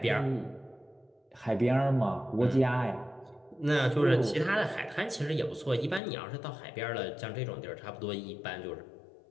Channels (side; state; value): right; drops out; at 6.0 s